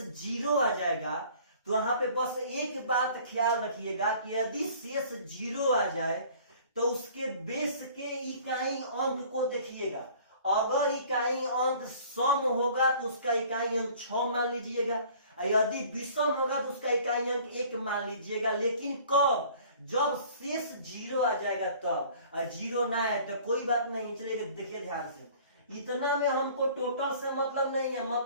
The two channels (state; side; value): inverted; both; correlation -0.50